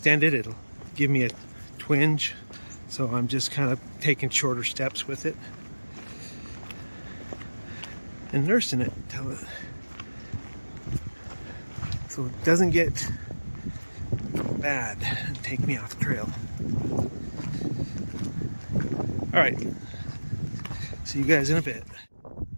it, it'll give me a twinge, so I'm just kind of taking shorter steps with it and nursing it until it, so it doesn't get bad and take me off trail. All right, see you guys in a bit.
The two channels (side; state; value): both; inverted; correlation -1.00